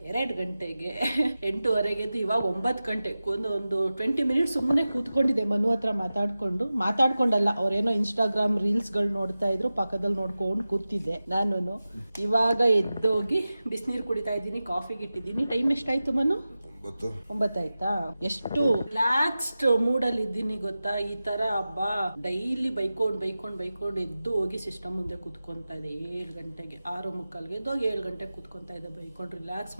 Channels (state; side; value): inverted; both; correlation -0.95